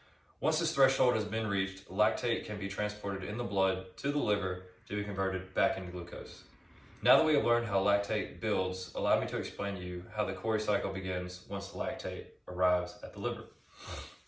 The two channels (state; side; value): identical; both; correlation 1.00